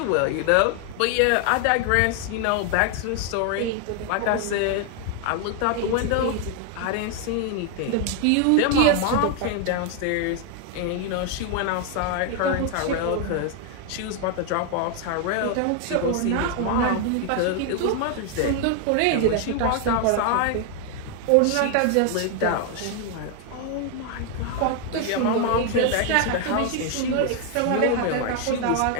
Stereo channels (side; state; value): both; different; correlation 0.01